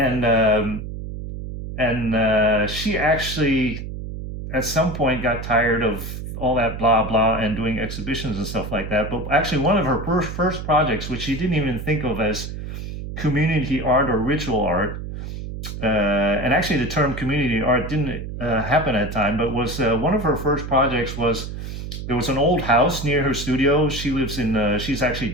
she actually at some point got tired of all that blah blah and doing exhibitions and stuff like that. But actually, one of her first projects, which she didn't even think of as community art or ritual art, and actually the term community art didn't happen at the time, but was one of her first projects was, there was an old house near her studio. She lives she's actually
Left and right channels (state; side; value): noise; right; hum, 7 dB below the sound